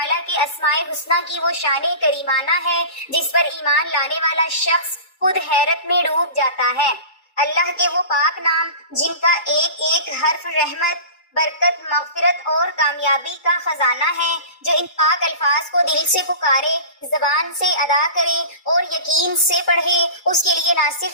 کے اسماء الحسنیٰ کی وہ شان کریمانہ ہے جس پر ایمان لانے والا شخص خود حیرت میں ڈوب جاتا ہے۔ اللہ کے وہ پاک نام جن کا ایک ایک حرف رحمت، برکت، مغفرت اور کامیابی کا خزانہ ہے، جو ان پاک الفاظ کو دل سے پکارے، زبان سے ادا کرے اور یقین سے پڑھے، اس کے لیے نہ صرف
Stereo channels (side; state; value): right; late; 2.3 ms